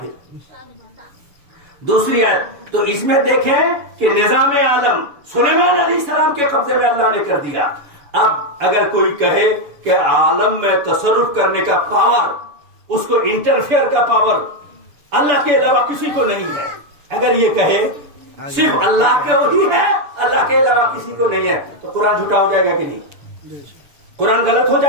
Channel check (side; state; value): left; late; 7.0 ms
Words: دوسری آیت۔ تو اس میں دیکھیں کہ نظام عالم سلیمان علیہ السلام کے قبضے میں اللہ نے کر دیا۔ اب اگر کوئی کہے کہ عالم میں تصرف کرنے کا پاور، اس کو انٹرفیئر کا پاور اللہ کے علاوہ کسی کو نہیں ہے، اگر یہ کہے صرف اللہ کے وہی ہے، اللہ کے علاوہ کسی کو نہیں ہے، تو قرآن جھوٹا ہو جائے گا کہ نہیں؟ قرآن غلط ہو